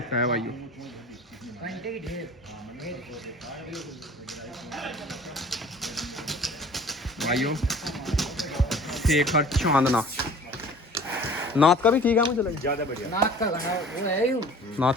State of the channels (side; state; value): both; normal; correlation 0.47